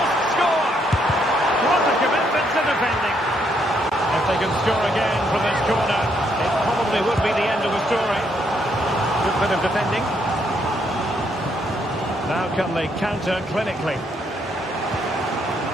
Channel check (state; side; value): normal; both; correlation 0.73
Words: score! What a commitment to defending. If they can score again from this corner, it probably would be the end of the story. Good bit of defending. Now can they counter clinically?